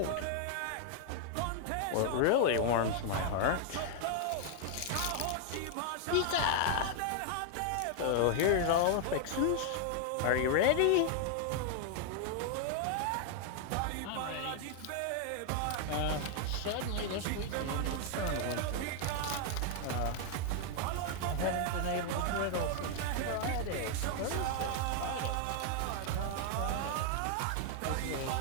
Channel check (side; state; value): both; different; correlation 0.00